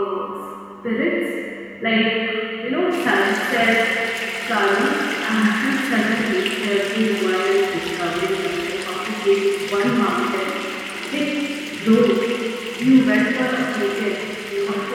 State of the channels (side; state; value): both; identical; correlation 1.00